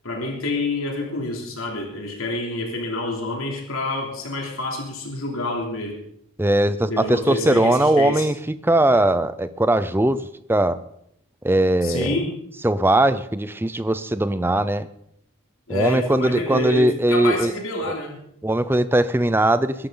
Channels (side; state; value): both; normal; correlation 0.72